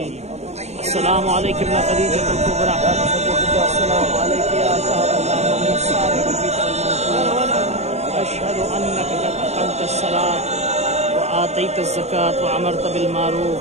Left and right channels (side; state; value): left; late; 0.32 ms